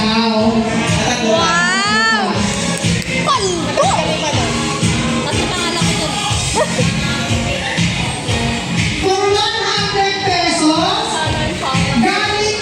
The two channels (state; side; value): identical; both; correlation 1.00